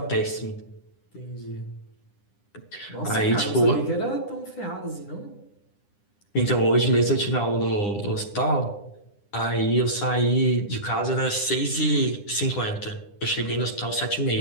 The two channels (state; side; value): late; right; 9.9 ms